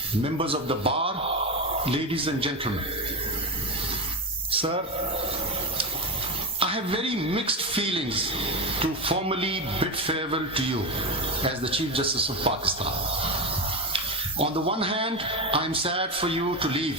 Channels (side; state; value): both; normal; correlation 0.16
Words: members of the bar, ladies and gentlemen. Sir, I have very mixed feelings to formally bid farewell to you as the Chief Justice of Pakistan. On the one hand, I am sad for you to